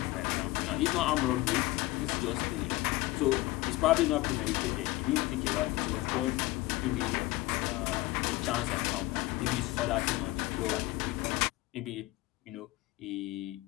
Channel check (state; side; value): quieter; right; 19.5 dB